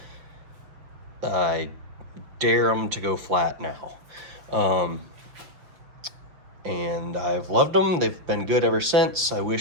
I dare them to go flat now. And I've loved them. They've been good ever since. I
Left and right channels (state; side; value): late; left; 6.1 ms